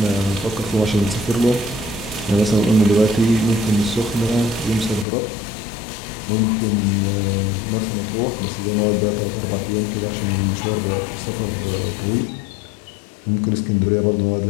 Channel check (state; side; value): drops out; right; at 5.1 s